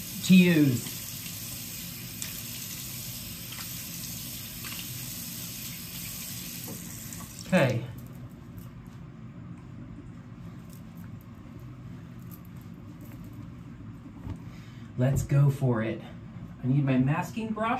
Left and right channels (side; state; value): both; identical; correlation 1.00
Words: to use. Okay. Let's go for it. I need my masking